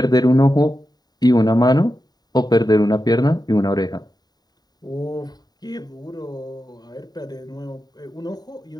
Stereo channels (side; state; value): right; late; 0.19 ms